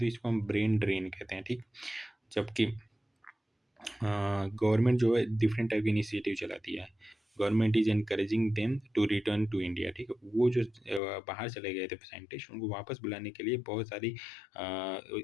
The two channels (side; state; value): right; drops out; at 11.0 s